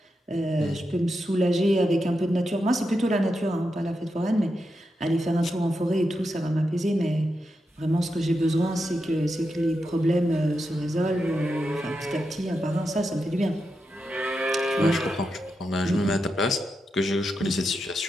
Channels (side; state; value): both; normal; correlation 0.87